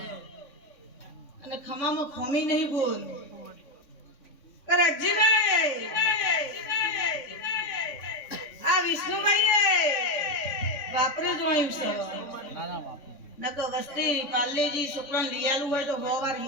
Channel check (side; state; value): right; late; 3.6 ms